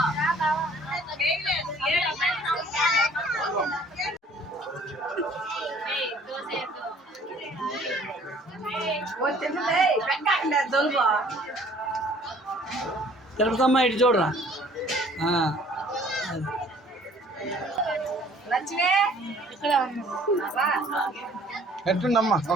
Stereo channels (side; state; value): both; normal; correlation 0.55